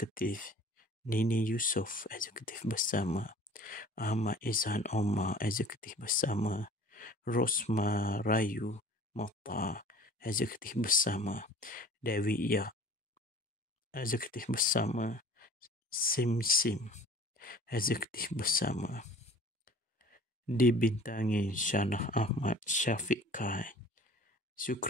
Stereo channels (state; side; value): normal; both; correlation 0.46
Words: Nini Yusof eksekutif bersama, Ahmad Izhan Omar eksekutif bersama, Rosma Rayu Mokhtar eksekutif bersama, Dewi Yak eksekutif bersama, Sim eksekutif bersama. Dibintangi Shahnaz Ahmad, Syafiq Kai,